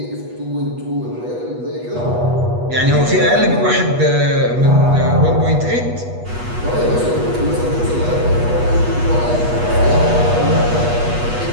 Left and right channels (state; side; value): late; left; 8.2 ms